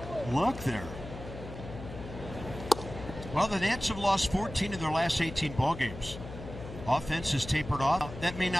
look there. Well, the Nats have lost 14 of their last 18 ball games. Offense has tapered off. That may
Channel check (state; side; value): noise; left; hum, 11 dB below the sound